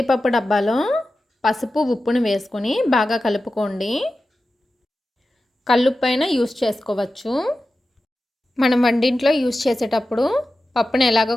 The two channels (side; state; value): both; normal; correlation 0.93